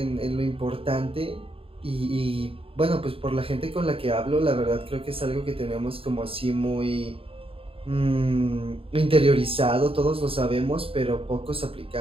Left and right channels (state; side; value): late; left; 0.27 ms